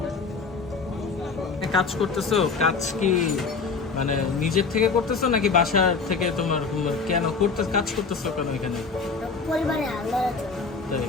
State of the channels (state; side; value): quieter; right; 4.8 dB